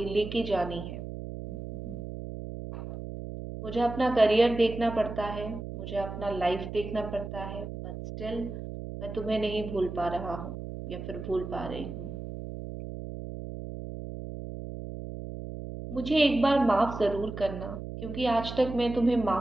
लेके जानी है। मुझे अपना करियर देखना पड़ता है, मुझे अपना लाइफ देखना पड़ता है, बट स्टिल मैं तुम्हें नहीं भूल पा रहा हूँ या फिर भूल पा रही हूँ। मुझे एक बार माफ़ ज़रूर करना, क्योंकि आज तक मैं तुम्हें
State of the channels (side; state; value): right; noise; hum, 8 dB below the sound